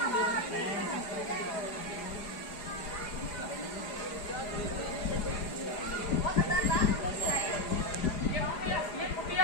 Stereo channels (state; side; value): late; right; 4.9 ms